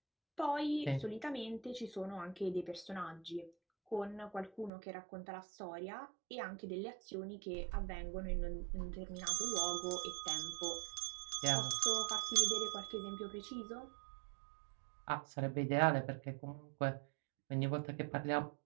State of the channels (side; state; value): left; drops out; at 4.7 s